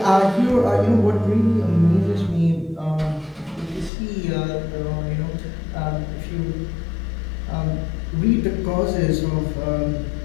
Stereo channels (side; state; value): right; drops out; at 3.9 s